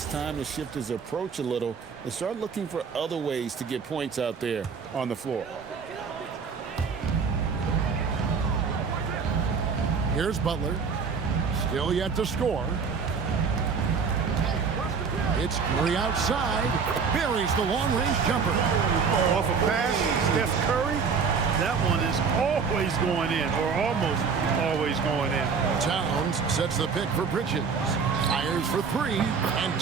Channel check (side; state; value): left; quieter; 5.6 dB